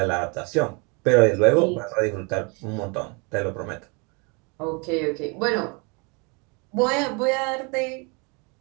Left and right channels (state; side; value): quieter; left; 31.3 dB